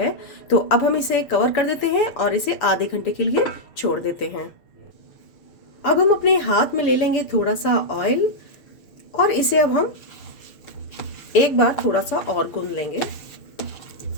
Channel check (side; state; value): right; late; 7.0 ms